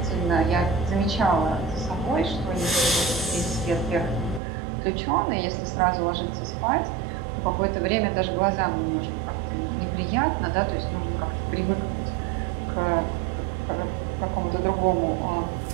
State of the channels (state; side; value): drops out; left; at 4.4 s